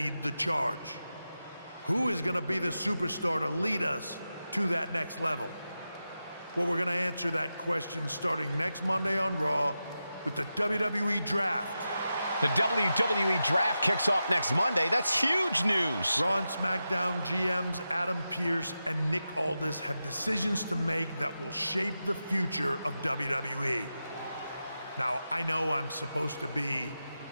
the charge. Who is going to be the superstar to lead us to that next level? Well, we're going to answer that question starting next Monday on Raw with the WWE Draft. The WWE Draft kicks off next Monday. That's huge news. Raw and SmackDown GMs Adam Pearce and Nick Aldis have decisions to make that will shape the future of WWE. Now, I know I'm supposed to be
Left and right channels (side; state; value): both; inverted; correlation -0.90